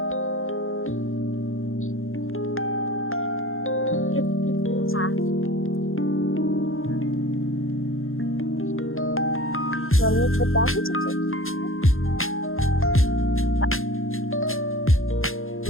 मम्मी बता के चलते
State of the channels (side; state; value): right; late; 0.60 ms